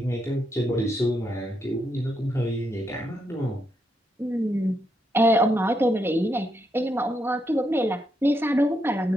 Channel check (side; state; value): both; normal; correlation 0.80